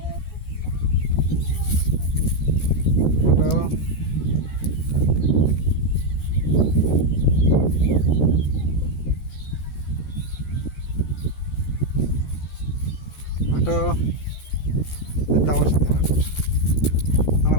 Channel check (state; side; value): late; right; 13 ms